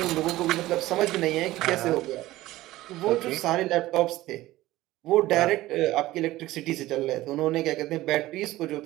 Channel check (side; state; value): left; quieter; 16.7 dB